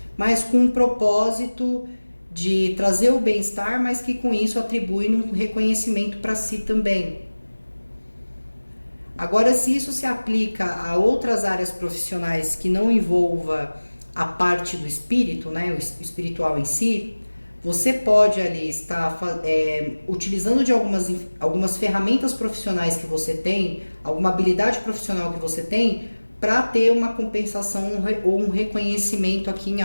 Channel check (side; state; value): both; inverted; correlation -1.00